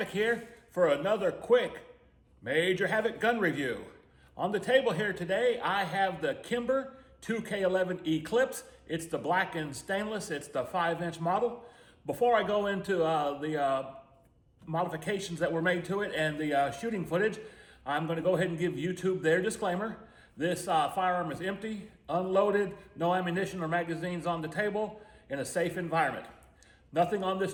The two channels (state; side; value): identical; both; correlation 1.00